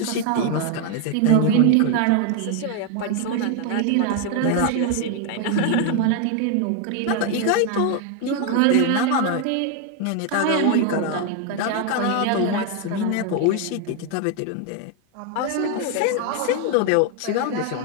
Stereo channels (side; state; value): both; different; correlation 0.00